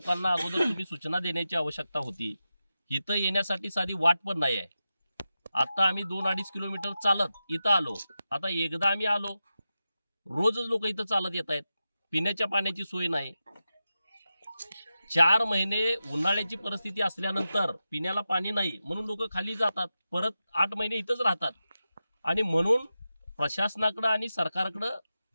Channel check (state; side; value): inverted; both; correlation -0.92